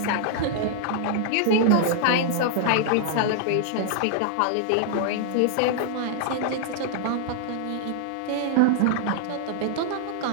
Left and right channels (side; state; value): both; different; correlation -0.01